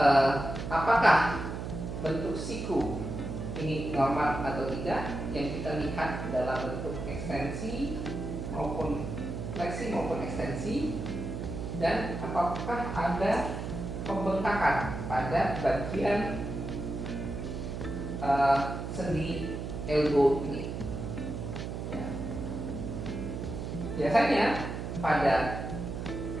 apakah bentuk siku ini normal atau tidak. Yang kita lihat adalah bentuk ekstensi maupun fleksi maupun ekstensi, dan apakah ada pembengkakan pada bagian sendi elbow ini. Ya. Biasanya pada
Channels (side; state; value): right; noise; hum, 5 dB below the sound